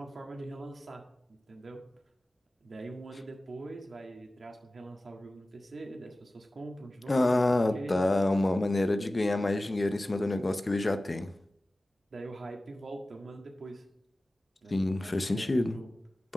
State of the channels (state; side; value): normal; both; correlation 0.96